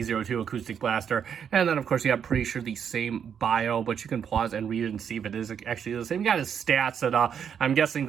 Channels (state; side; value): quieter; left; 7.8 dB